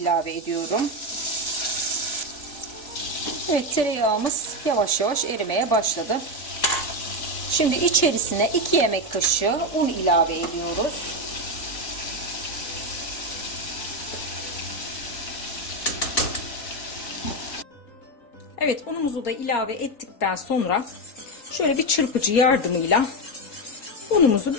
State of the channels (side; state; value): right; late; 3.9 ms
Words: ediyorum. Evet, tereyağımız yavaş yavaş erimeye başladı. Şimdi içerisine 2 yemek kaşığı un ilave ediyoruz. Evet, unumuzu da ilave ettikten sonra şöyle bir çırpıcı yardımıyla unumuzu